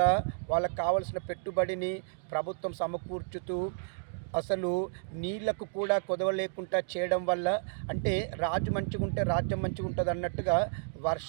వాళ్ళకు కావలసిన పెట్టుబడిని ప్రభుత్వం సమకూర్చుతూ అసలు నీళ్లకు కూడా కొదవ లేకుండా చేయడం వల్ల, అంటే రాజు మంచిగా ఉంటే రాజ్యం మంచిగా ఉంటుంది అన్నట్టుగా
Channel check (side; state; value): left; silent; digital silence